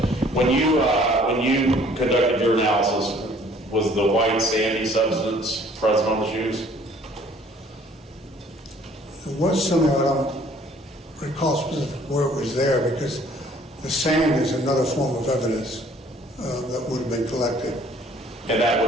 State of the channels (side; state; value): both; normal; correlation 0.57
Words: When you conducted your analysis, was the white sandy substance present on the shoes? There was something, I don't recall specifically where it was there, because the sand is another form of evidence that would have been collected. And that